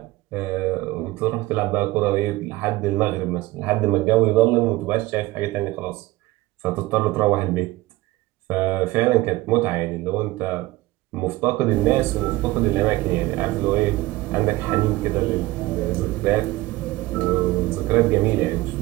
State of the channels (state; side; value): quieter; left; 19.0 dB